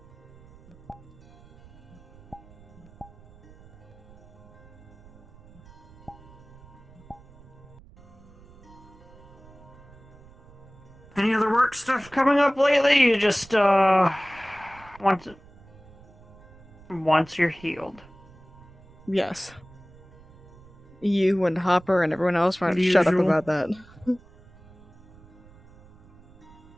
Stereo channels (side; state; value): right; noise; rumble, 23 dB below the sound